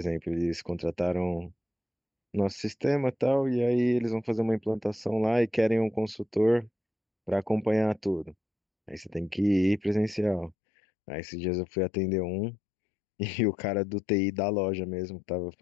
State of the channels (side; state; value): right; drops out; at 10.6 s